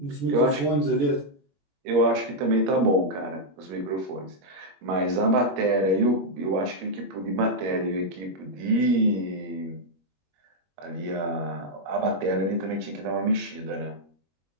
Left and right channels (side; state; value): left; late; 21 ms